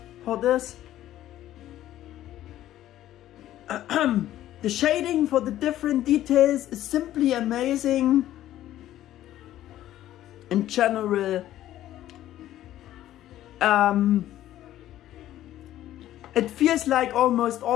for this. The shading for the different details is simply amazing. In general, it feels like almost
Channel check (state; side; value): quieter; right; 13.2 dB